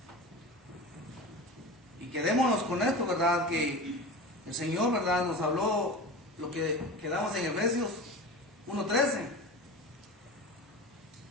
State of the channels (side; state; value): both; normal; correlation 0.31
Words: Y quedémonos con esto, ¿verdad?, que el Señor, ¿verdad?, nos habló lo que quedamos en Efesios 1:13.